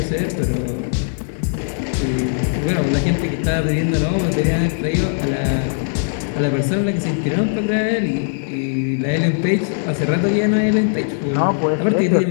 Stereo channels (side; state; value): right; silent; 66 dB below the other